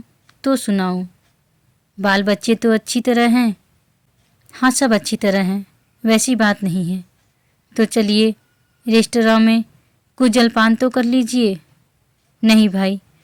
तो सुनाऊं। बाल बच्चे तो अच्छी तरह हैं? हाँ, सब अच्छी तरह हैं, वैसी बात नहीं है। तो चलिए रेस्तरां में कुछ जलपान तो कर लीजिए। नहीं भाई,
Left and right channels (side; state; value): both; identical; correlation 1.00